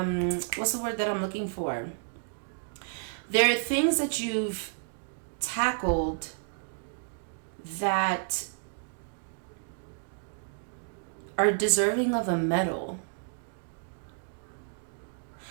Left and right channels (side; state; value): left; silent; digital silence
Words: what's the word that I'm looking for? There are things that you've tackled that are deserving of a medal.